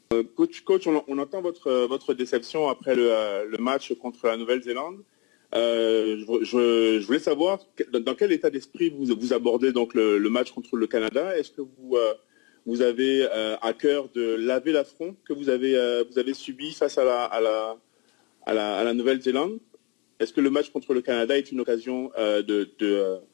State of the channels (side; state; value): right; quieter; 29.8 dB